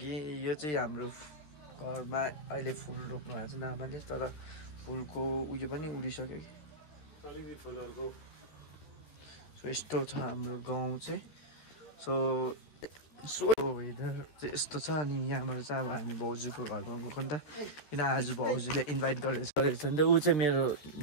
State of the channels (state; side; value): late; right; 13 ms